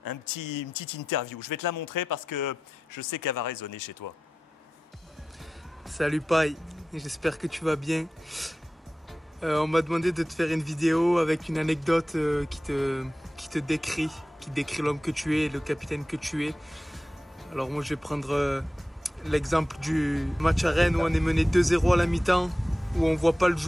une petite interview. Je vais te la montrer parce que je sais qu'elle va résonner chez toi. Salut Paille, j'espère que tu vas bien. On m'a demandé de te faire une vidéo avec une anecdote qui décrit l'homme que tu es, le capitaine que tu es. Alors moi je vais prendre l'exemple du match à Rennes où on est mené 2-0 à la mi-temps, où on voit pas le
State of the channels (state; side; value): normal; both; correlation 0.93